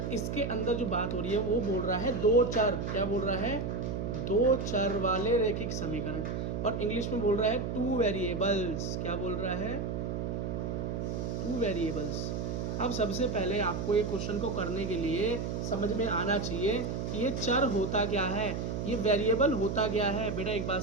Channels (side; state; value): right; noise; hum, 2 dB below the sound